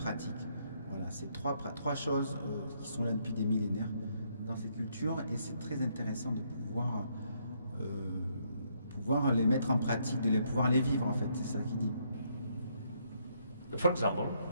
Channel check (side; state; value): both; inverted; correlation -0.72